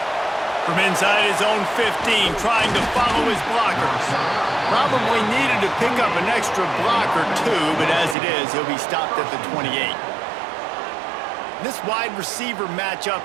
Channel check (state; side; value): drops out; left; at 8.2 s